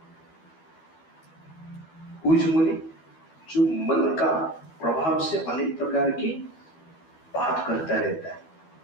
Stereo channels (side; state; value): right; late; 12 ms